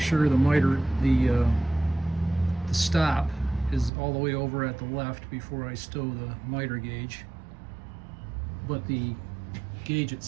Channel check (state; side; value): drops out; left; at 3.9 s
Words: the miter, the stop is all the way over at the left before I stow the miter gauge. But the gauge